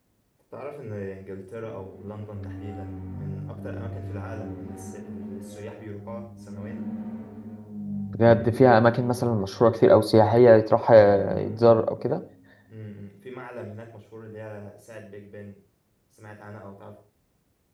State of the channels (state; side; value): identical; both; correlation 1.00